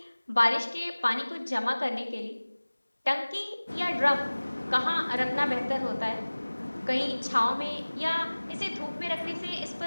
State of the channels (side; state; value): both; inverted; correlation -1.00